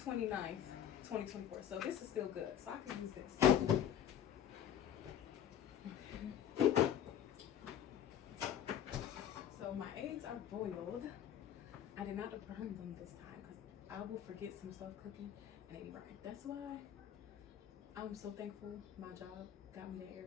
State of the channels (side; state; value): right; quieter; 9.7 dB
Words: 2024. So this is still good. So I can use this. So my eggs are boiled. I did not burn them this time because I will forget some stuff cooking and they be burning. That's why I'm so thankful my job got me that